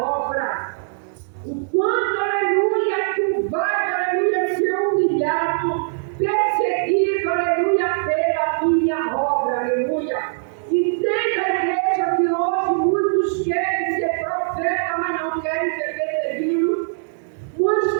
O quanto, aleluia, tu vais, aleluia, ser humilhado, perseguido, aleluia, pela minha obra, aleluia. Entenda a igreja que hoje muitos querem ser profeta, mas não querem ser perseguidos. Muitos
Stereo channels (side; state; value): left; silent; digital silence